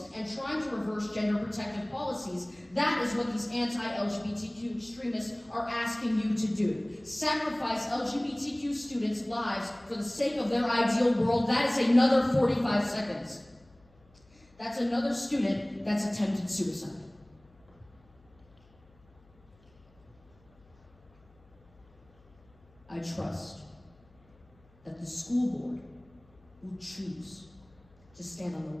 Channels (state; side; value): noise; left; hum, 29 dB below the sound